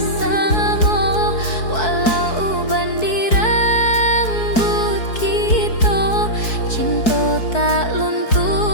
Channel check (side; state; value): right; late; 4.6 ms